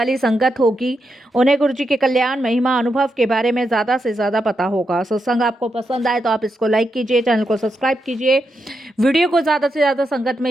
संगत होगी उन्हें गुरु जी के कल्याण महिमा अनुभव के बारे में ज़्यादा से ज़्यादा पता होगा। सत्संग आपको पसंद आए तो आप इसको लाइक कीजिए, चैनल को सब्सक्राइब कीजिए, वीडियो को ज़्यादा से ज़्यादा संगत में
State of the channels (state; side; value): normal; both; correlation 0.84